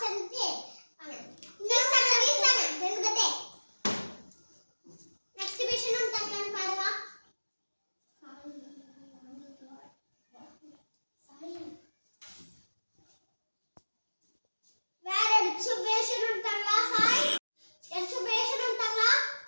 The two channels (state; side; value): inverted; both; correlation -1.00